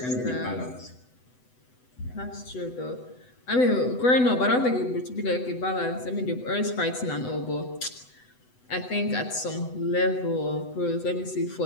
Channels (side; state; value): right; late; 8.0 ms